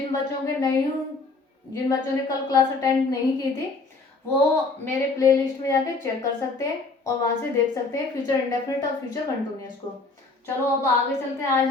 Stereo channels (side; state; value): right; quieter; 3.7 dB